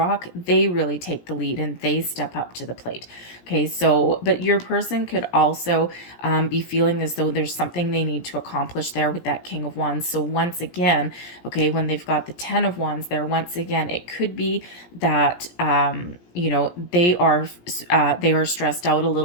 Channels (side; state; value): right; late; 17 ms